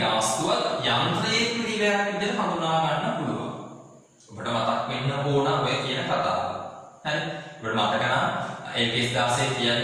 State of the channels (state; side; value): identical; both; correlation 1.00